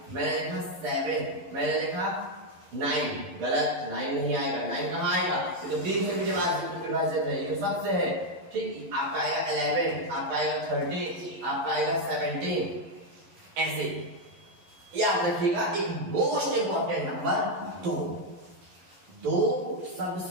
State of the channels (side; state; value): left; late; 11 ms